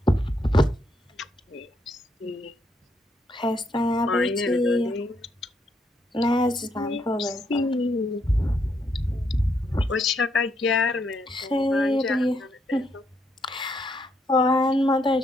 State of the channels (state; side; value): normal; both; correlation 0.75